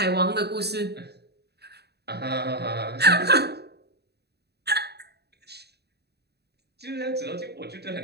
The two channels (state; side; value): late; left; 0.48 ms